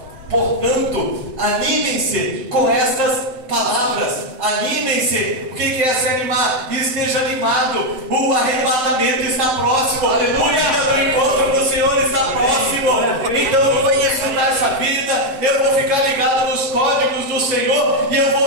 portanto, animem-se com estas palavras. Animem-se. O que é se animar? Esteja animado. O arrebatamento está próximo. Aleluia. O dia do encontro do Senhor está próximo. Então eu vou desfrutar essa vida. Eu vou ficar ligado nos códigos do Senhor. E eu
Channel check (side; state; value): left; late; 7.8 ms